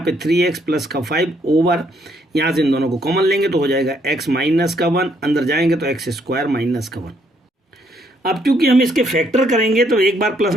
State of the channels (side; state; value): both; normal; correlation 0.70